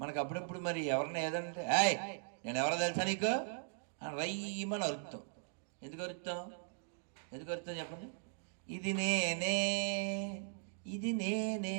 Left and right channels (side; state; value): left; silent; digital silence